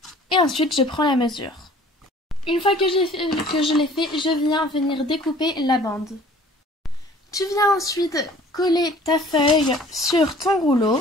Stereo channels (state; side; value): normal; both; correlation 0.51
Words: Et ensuite je prends la mesure. Une fois que je l'ai fait, je viens venir découper la bande. Tu viens ensuite coller ta feuille sur ton